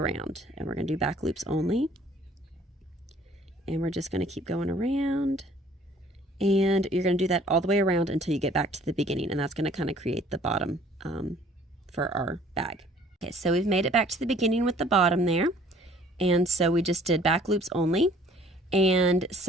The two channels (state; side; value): normal; both; correlation 0.55